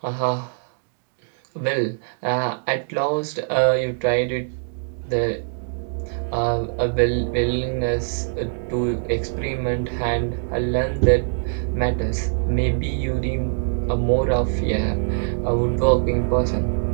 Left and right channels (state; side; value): silent; left; digital silence